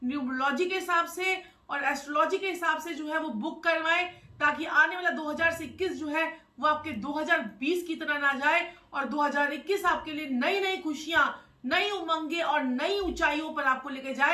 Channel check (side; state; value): both; identical; correlation 1.00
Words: न्यूमरोलॉजी के हिसाब से और एस्ट्रोलॉजी के हिसाब से जो है वो बुक करवाएं, ताकि आने वाला 2021 जो है वो आपके 2020 की तरह ना जाए और 2021 आपके लिए नई नई खुशियां, नई उमंगे और नई ऊंचाइयों पर आपको लेके